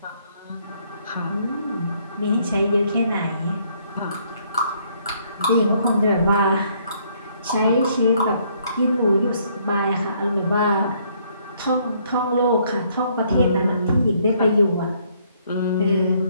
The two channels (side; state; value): both; inverted; correlation -0.67